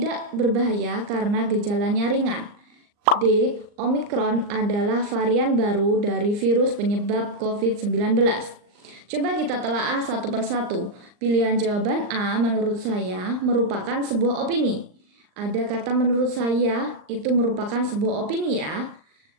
berbahaya karena gejalanya ringan. D. Omikron adalah varian baru dari virus penyebab COVID-19. Coba kita telaah satu persatu. Pilihan jawaban A menurut saya merupakan sebuah opini. Ada kata menurut saya itu merupakan sebuah opini ya.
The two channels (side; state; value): left; late; 39 ms